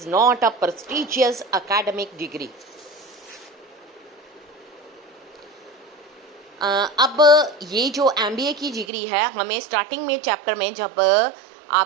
not a prestigious academic degree. अब ये जो MBA की डिग्री है हमें स्टार्टिंग में चैप्टर में जब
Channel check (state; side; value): drops out; left; at 8.8 s